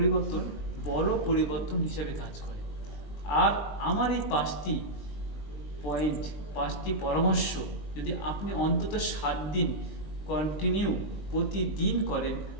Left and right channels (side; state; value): right; late; 19 ms